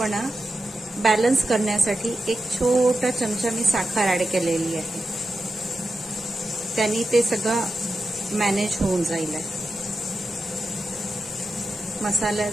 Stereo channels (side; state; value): both; normal; correlation 0.89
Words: बॅलन्स करण्यासाठी 1 छोटा चमचा मी साखर ऍड केलेली आहे. त्यांनी ते सगळं मॅनेज होऊन जाईल.